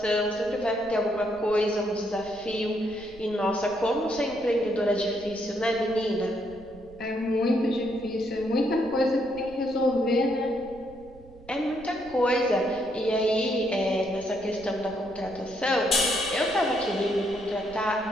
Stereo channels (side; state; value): right; noise; rumble, 21 dB below the sound